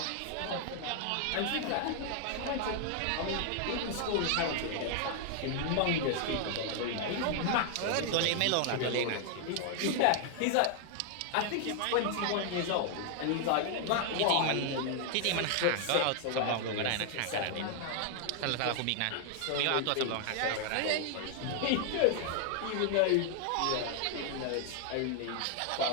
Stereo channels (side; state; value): both; different; correlation 0.00